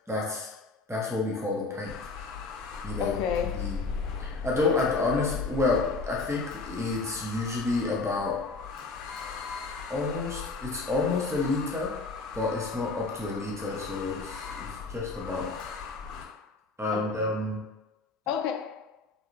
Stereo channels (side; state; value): right; quieter; 3.6 dB